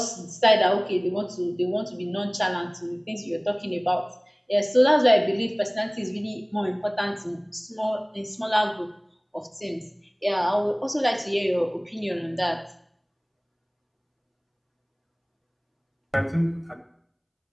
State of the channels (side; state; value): both; identical; correlation 1.00